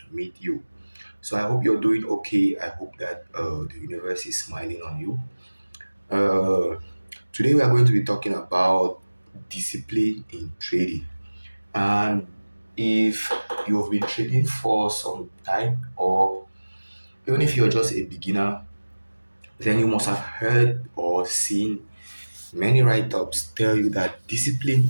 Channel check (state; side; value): inverted; both; correlation -1.00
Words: meet you. So I hope you're doing okay. I hope that the universe is smiling on you. Uh, Today we are going to be talking about discipline in trading. And if you have been trading for some time, or even if you're just a beginner, then you must have heard or seen many write-ups tell you that discipline